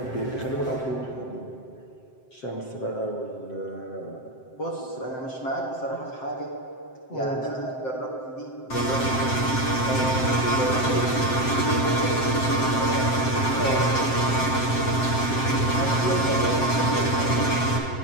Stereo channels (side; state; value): right; late; 7.7 ms